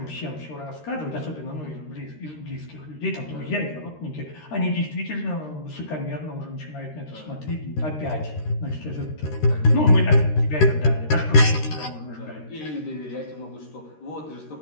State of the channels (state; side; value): late; right; 13 ms